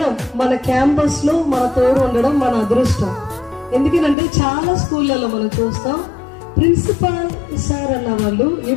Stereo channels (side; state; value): right; drops out; at 4.2 s